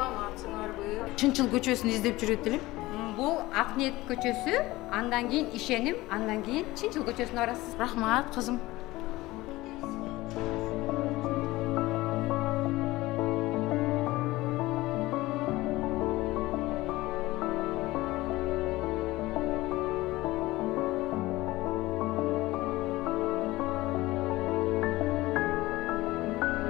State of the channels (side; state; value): right; quieter; 18.9 dB